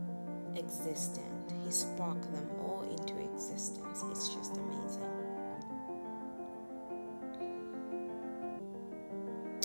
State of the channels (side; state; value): both; inverted; correlation -1.00